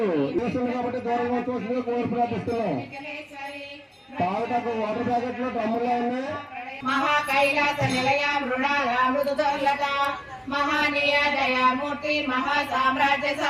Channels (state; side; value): identical; both; correlation 1.00